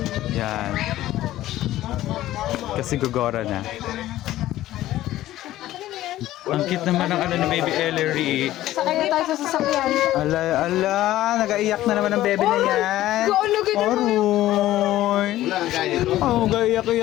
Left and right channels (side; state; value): right; quieter; 14.6 dB